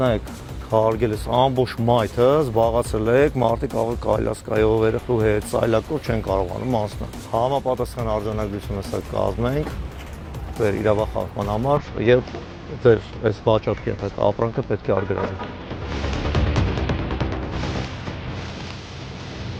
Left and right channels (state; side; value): identical; both; correlation 1.00